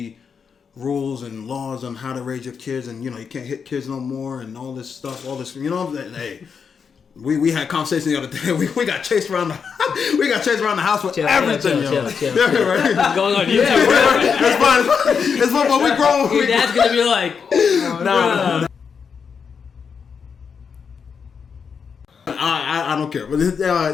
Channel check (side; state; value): right; quieter; 6.3 dB